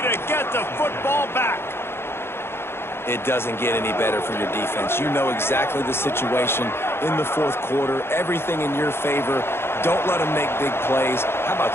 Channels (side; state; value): right; late; 0.12 ms